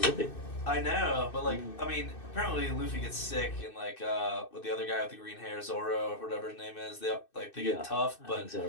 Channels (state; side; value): late; right; 2.6 ms